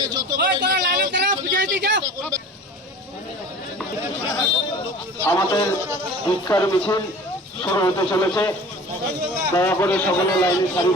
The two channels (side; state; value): both; normal; correlation 0.41